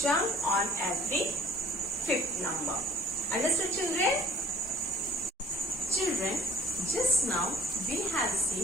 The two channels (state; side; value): normal; both; correlation 0.54